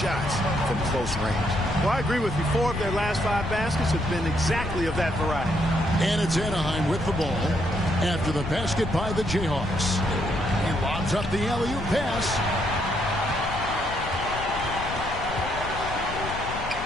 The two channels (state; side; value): noise; left; rumble, 9 dB below the sound